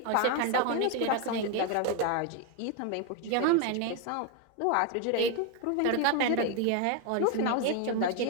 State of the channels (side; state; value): both; different; correlation 0.01